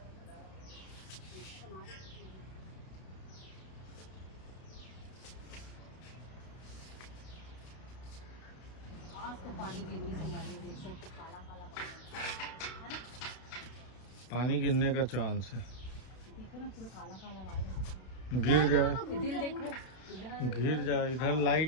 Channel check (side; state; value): right; late; 32 ms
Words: आज तो पानी गिर रही हमारे, देख सकते काला काला पानी है ना। पानी गिरने का चांस है। देखो ना पूरा काला काला पानी। गिर जाए, इधर देखो, इधर गिर जाए। इधर